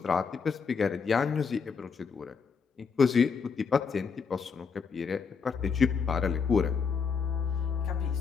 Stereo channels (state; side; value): quieter; right; 5.7 dB